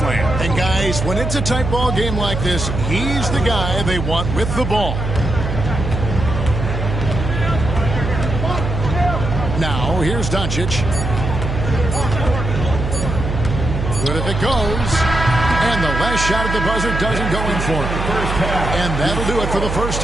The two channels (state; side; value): noise; right; hum, 3 dB below the sound